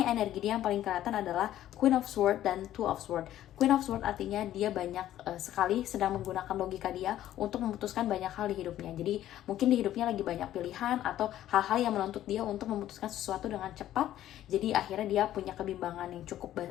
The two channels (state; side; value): quieter; right; 12.7 dB